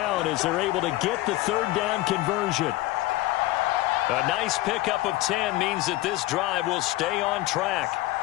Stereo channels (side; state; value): right; quieter; 17.4 dB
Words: as they're able to get the 3rd down conversion. A nice pickup of 10 means that this drive will stay on track.